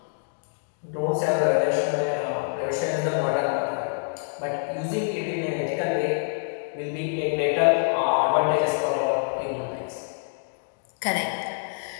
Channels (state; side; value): silent; right; 61 dB below the other